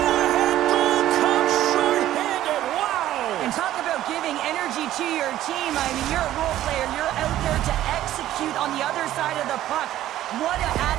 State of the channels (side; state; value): left; quieter; 13.4 dB